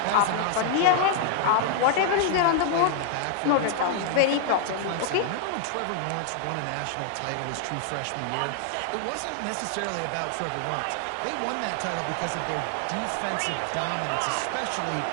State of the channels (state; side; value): different; both; correlation 0.00